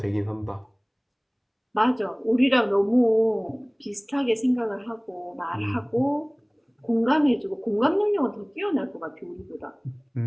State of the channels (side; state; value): both; identical; correlation 1.00